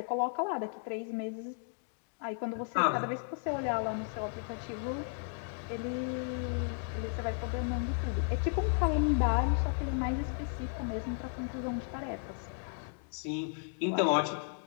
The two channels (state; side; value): silent; right; 55 dB below the other